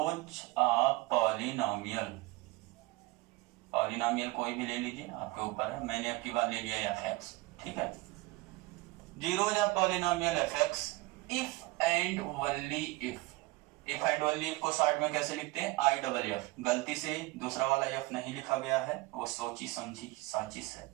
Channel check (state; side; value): quieter; left; 21.6 dB